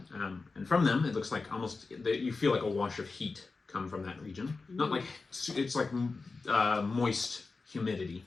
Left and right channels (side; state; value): right; quieter; 4.0 dB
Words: and from them it looks like almost you feel like a wash of heat come from that region. Not like it's like moist humidity